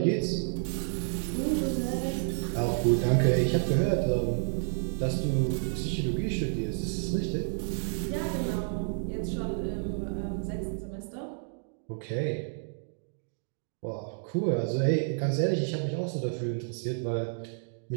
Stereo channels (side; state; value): left; silent; digital silence